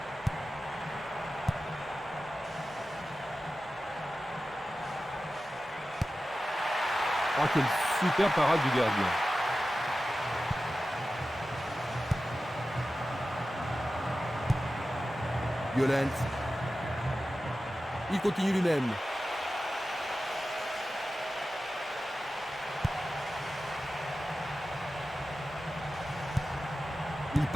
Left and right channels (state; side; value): normal; both; correlation 0.94